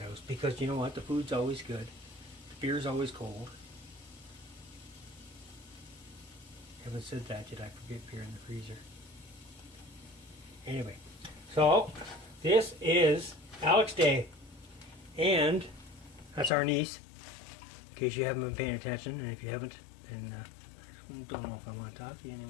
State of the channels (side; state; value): right; drops out; at 16.5 s